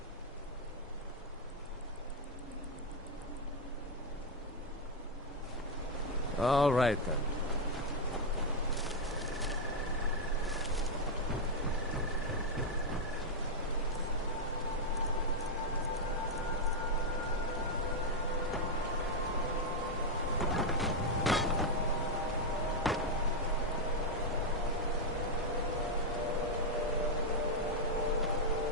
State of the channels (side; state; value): both; normal; correlation 0.02